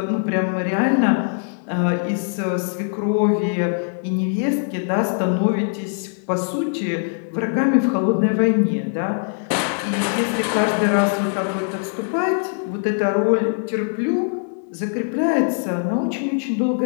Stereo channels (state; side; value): silent; right; digital silence